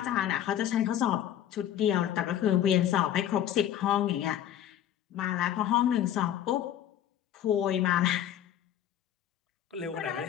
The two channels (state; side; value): quieter; right; 11.0 dB